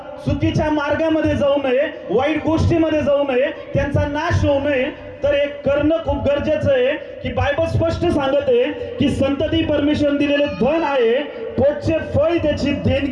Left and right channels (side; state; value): both; identical; correlation 1.00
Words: चुकीच्या मार्गामध्ये जाऊ नये, वाईट गोष्टीमध्ये जाऊ नये, त्यांचा नाश होऊ नये, तर एक करणं खूप गरजेचं आहे की बायबल स्पष्ट सांगत आहे की संतती परमेश्वर दिलेले धन आहे, पोटचे फळ त्याची